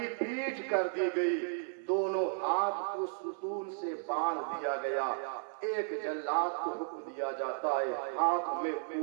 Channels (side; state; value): left; silent; 55 dB below the other